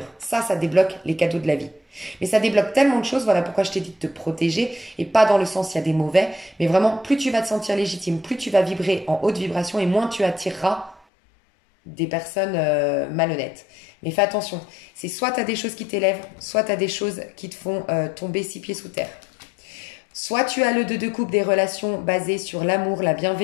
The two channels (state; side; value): drops out; right; at 11.0 s